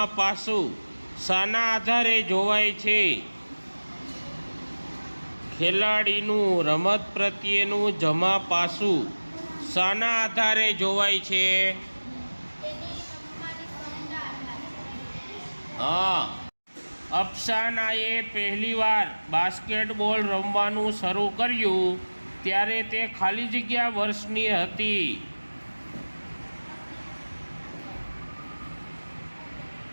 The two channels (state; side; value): inverted; both; correlation -1.00